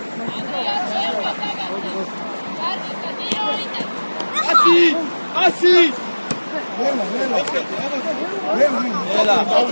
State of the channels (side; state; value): both; inverted; correlation -1.00